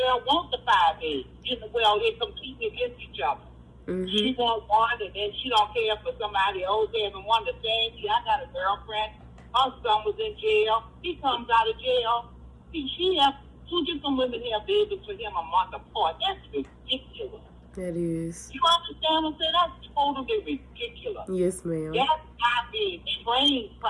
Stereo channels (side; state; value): both; identical; correlation 1.00